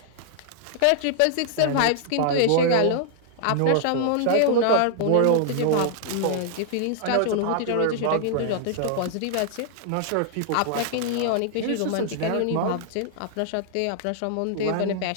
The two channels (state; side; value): different; both; correlation -0.01